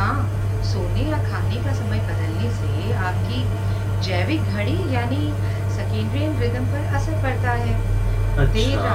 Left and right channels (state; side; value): identical; both; correlation 1.00